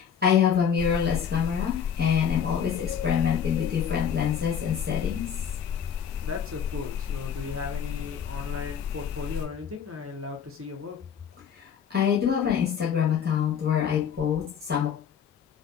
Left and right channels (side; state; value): right; quieter; 7.9 dB